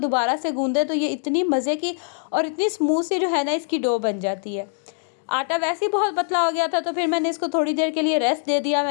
से गूंदे तो ये इतनी मज़े की और इतनी स्मूथ सी जो है ना इसकी डो बन जाती है। आटा वैसे ही बहुत पतला हो गया था तो फिर मैंने इसको थोड़ी देर के लिए रेस्ट दे दिया।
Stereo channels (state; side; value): silent; right; digital silence